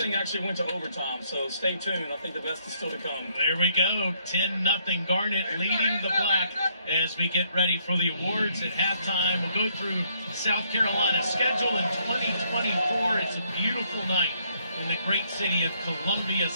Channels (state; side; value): inverted; both; correlation -0.70